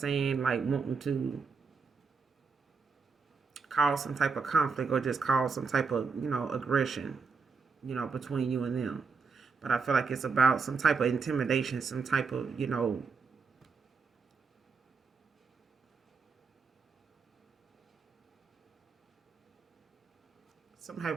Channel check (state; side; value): quieter; left; 5.0 dB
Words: Like wanting to cause some type of conflict, or just cause some type of, you know, aggression, you know, between you and them. But I feel like it's about some type of intimidation, some type of, you know, some